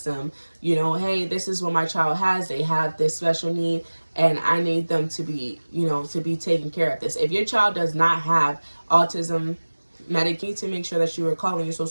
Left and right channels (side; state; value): both; inverted; correlation -1.00